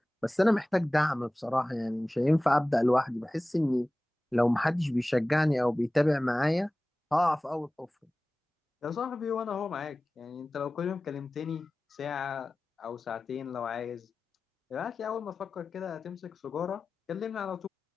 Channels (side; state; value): both; normal; correlation 0.97